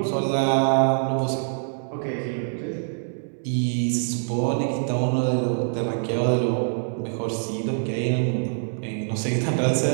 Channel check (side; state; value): left; silent; 62 dB below the other